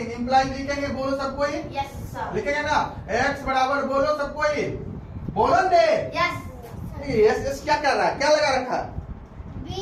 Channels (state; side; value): identical; both; correlation 1.00